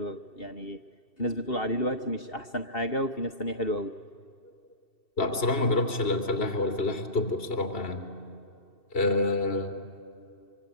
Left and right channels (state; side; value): late; right; 2.7 ms